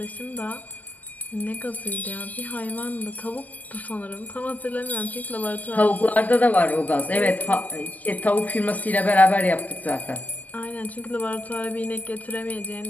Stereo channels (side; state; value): right; late; 0.080 ms